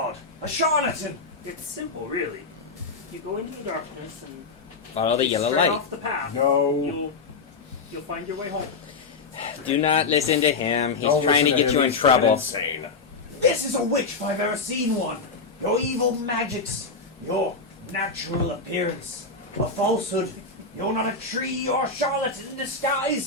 A charlatan! It's simple, really. You go into the darkness and Follow the yellow straight light. off the path. No. You'll find your way home. Do not listen to him. He's Don't trying to listen get you him, in he's trouble. Insane. This is a witch if I've ever seen one. Your evil magics, your natural appearance, a falsehood. You're not a tree or a charlatan in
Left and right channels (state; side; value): quieter; right; 4.3 dB